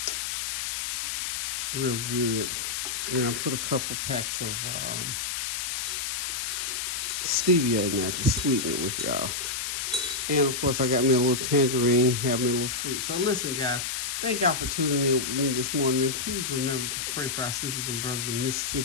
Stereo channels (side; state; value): left; noise; hiss, 2 dB below the sound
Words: real good. And I put a couple packs of stevia in there to sweeten it with y'all. And of course, I got me a little tangerine, have me a little fruit. So listen, guys, thank y'all for tuning in with me this morning. And please remember to pray for our sisters and brothers in